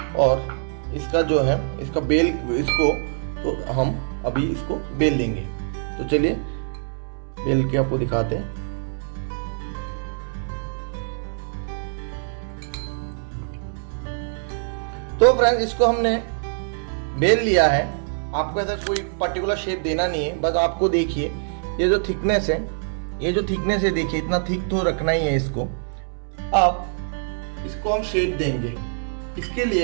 और इसका जो है इसका बेल इसको तो हम अभी इसको बेल लेंगे। तो चलिए बेल के आपको दिखाते हैं। तो फ्रेंड्स इसको हमने बेल लिया है। आपको ऐसा कोई पर्टिकुलर शेप देना नहीं है, बस आपको देखिए ये जो थिकनेस है देखिए इतना थिक तो रखना ही है इसको। अब इसको हम शेप देंगे। इसके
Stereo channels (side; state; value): left; silent; digital silence